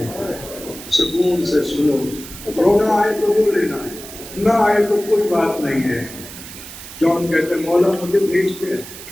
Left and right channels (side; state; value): right; noise; hiss, 14 dB below the sound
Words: سکون سے سنو, رونا آئے تو رو لینا, نہ آئے تو کوئی بات نہیں ہے. جون کہتے مولا مجھے بھیجتے ہیں.